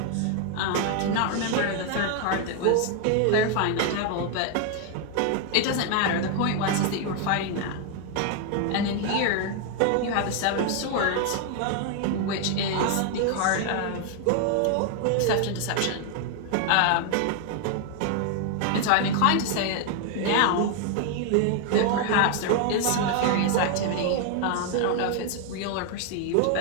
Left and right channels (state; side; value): different; both; correlation 0.00